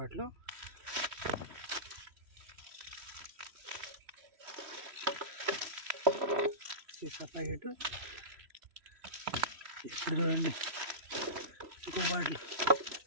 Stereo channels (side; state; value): left; late; 3.0 ms